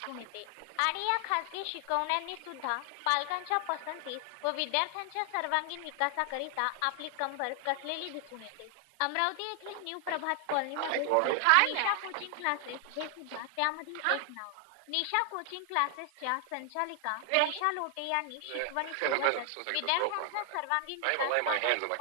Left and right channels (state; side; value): different; both; correlation 0.00